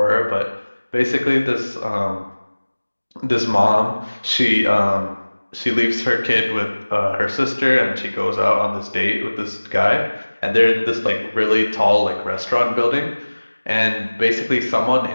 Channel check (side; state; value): both; inverted; correlation -1.00